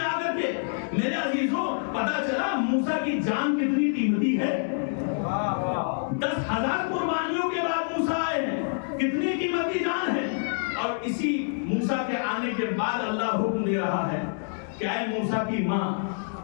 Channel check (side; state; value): right; silent; digital silence